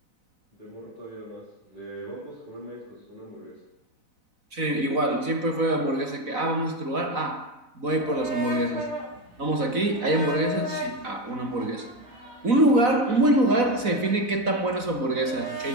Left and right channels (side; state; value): left; late; 4.0 ms